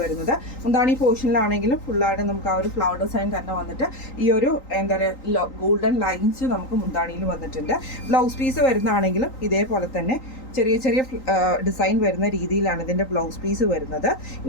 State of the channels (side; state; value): right; late; 3.9 ms